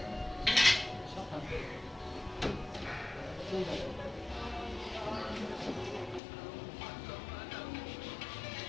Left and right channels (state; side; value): drops out; right; at 6.2 s